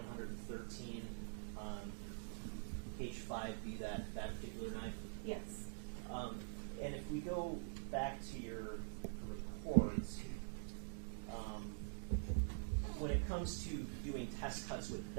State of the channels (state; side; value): silent; left; digital silence